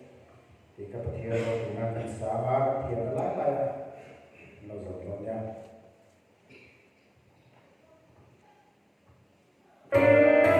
thì các bạn hiểu rồi chúng ta cần xả ba thì nó lại nó rồi lồng nha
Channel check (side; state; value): both; identical; correlation 1.00